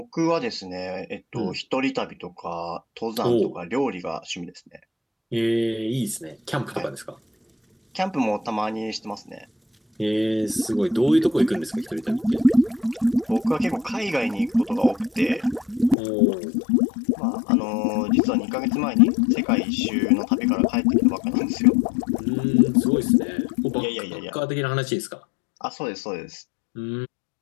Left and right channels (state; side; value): drops out; right; at 16.0 s